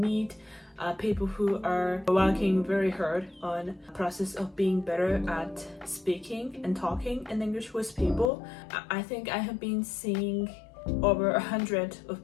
people who are working very hard on the process of being better at speaking and talking in English with people. I think I have been seeing over 100 of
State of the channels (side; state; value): right; drops out; at 8.3 s